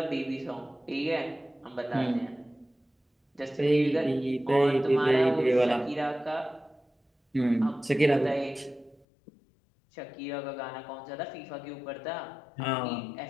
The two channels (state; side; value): drops out; right; at 9.1 s